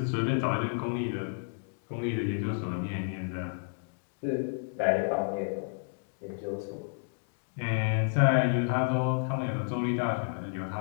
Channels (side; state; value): right; silent; digital silence